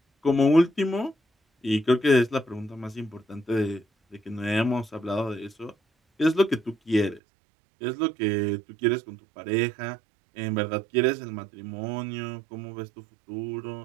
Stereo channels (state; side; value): drops out; left; at 7.2 s